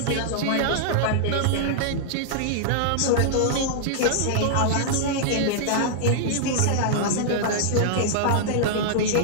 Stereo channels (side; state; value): both; different; correlation -0.01